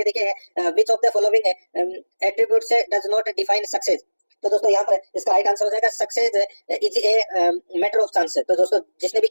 देखिए, which of the following attributes does not define success. तो दोस्तों यहाँ पर इसका राइट आंसर हो जाएगा success is a matter of chance. तो दोस्तों जिसने भी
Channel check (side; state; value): both; inverted; correlation -1.00